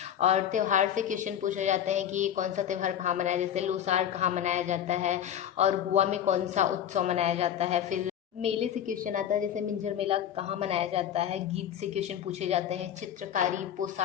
और त्यौहार से क्वेश्चन पूछे जाते हैं कि कौन सा त्यौहार कहाँ मनाया, जैसे लोसार कहाँ मनाया जाता है और गोवा में कौन सा उत्सव मनाया जाता है। फिर मेले से क्वेश्चन आता है, जैसे मिंजर मेला कहाँ मनाया जाता है। गीत से क्वेश्चन पूछे जाते हैं। चित्रकारी,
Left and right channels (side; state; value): right; quieter; 9.9 dB